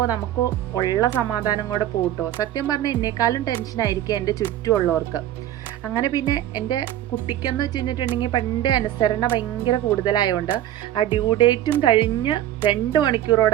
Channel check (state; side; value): quieter; left; 12.6 dB